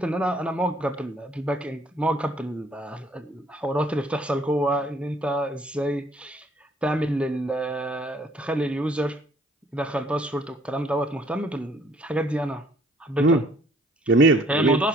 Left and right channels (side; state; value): both; normal; correlation 0.60